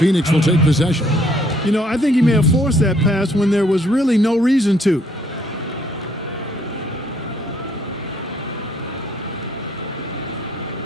will take possession. You know, I think he may have forced that pass when there was really no reason to.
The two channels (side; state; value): both; normal; correlation 0.66